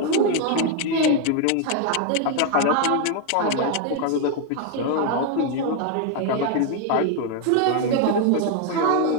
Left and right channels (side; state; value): both; different; correlation 0.01